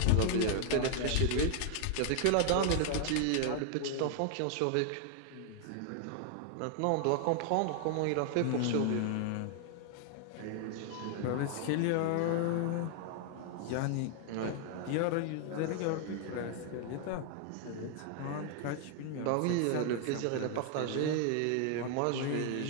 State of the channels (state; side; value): different; both; correlation 0.00